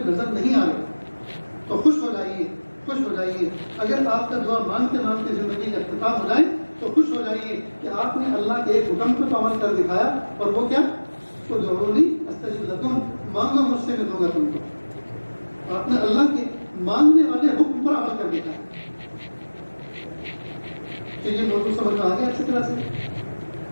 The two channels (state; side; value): inverted; both; correlation -1.00